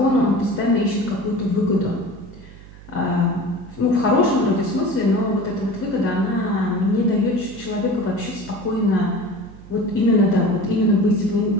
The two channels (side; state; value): right; noise; hum, 19 dB below the sound